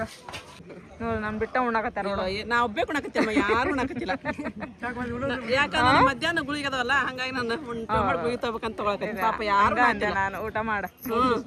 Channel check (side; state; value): both; identical; correlation 1.00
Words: ನೋಡಿ ನಾನು ಬಿಟ್ಟ ಉಣ್ಣಾಕತ್ತಾರ ನೋಡು. ನಾ ಒಬ್ಬೇ ಕುಣಕತ್ತಮ್ಮ, ಯಾರು ಉಣ್ಣಾಕತ್ತಿಲ್ಲ. ಯಾಕಂದ್ರೆ ಮಧ್ಯಾಹ್ನ ಗುಳಿಗೆ ಅದಾವಲ್ಲ, ಹಂಗಾಗಿ ನಾನು ಗುಳಿಗೆ ತಗೋಬೇಕಂತ ತಗೊಳಕತ್ತೀನಿ. ಪಾಪ ಯಾರು ಅಂದೆ ನಾನು ಊಟ ಮಾಡ.